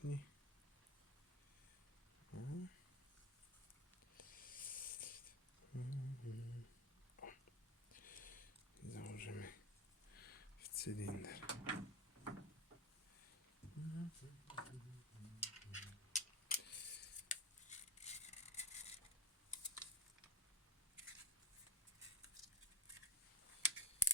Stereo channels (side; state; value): both; normal; correlation 0.27